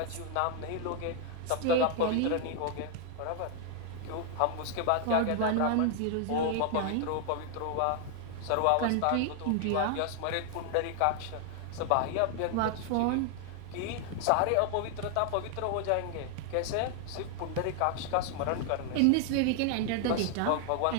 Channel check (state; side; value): different; both; correlation 0.00